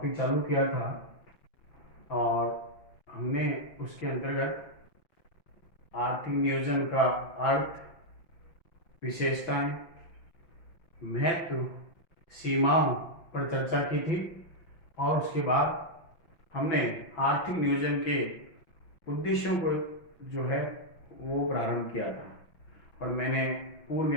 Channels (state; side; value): late; right; 5.8 ms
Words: चालू किया था और हमने उसके अंतर्गत आर्थिक नियोजन का अर्थ, विशेषताएं, महत्व, सीमाओं पर चर्चा की थी और उसके बाद हमने आर्थिक नियोजन के उद्देश्यों को जो है वो प्रारंभ किया था और मैंने पूर्व